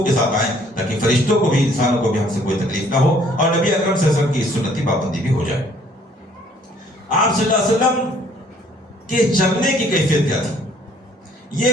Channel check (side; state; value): both; normal; correlation 0.60